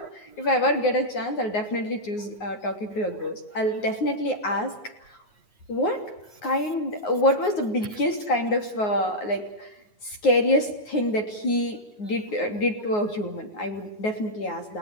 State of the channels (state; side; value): late; right; 9.5 ms